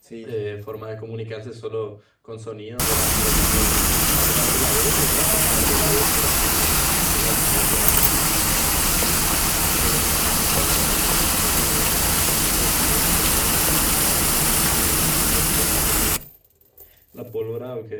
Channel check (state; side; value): identical; both; correlation 1.00